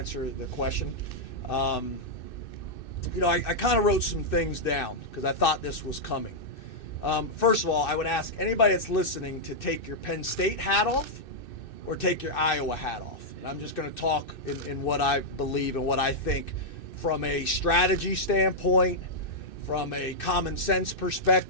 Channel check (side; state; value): right; late; 2.6 ms